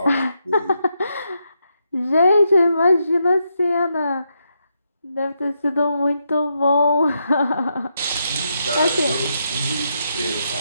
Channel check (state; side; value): inverted; both; correlation -0.81